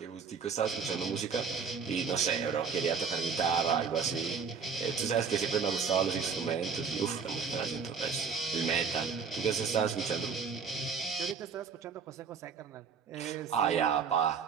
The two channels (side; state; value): left; quieter; 5.9 dB